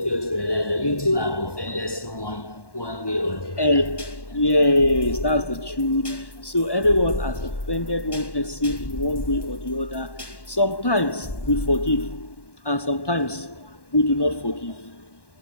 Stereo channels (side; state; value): right; late; 1.1 ms